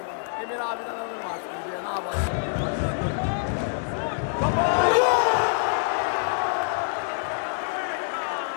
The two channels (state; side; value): silent; right; digital silence